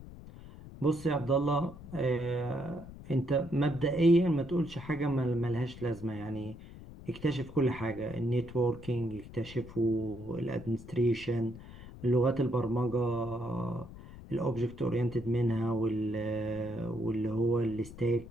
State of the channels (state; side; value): noise; left; rumble, 15 dB below the sound